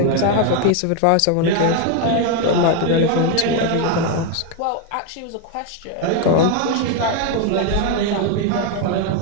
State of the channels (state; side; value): different; both; correlation 0.01